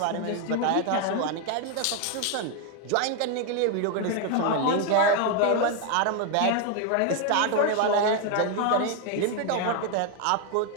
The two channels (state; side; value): different; both; correlation 0.01